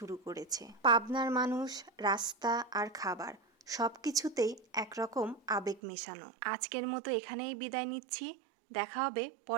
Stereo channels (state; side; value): drops out; left; at 5.8 s